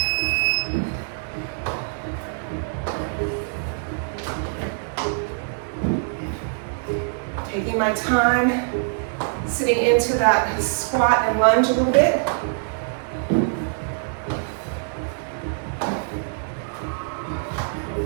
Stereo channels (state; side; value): silent; left; digital silence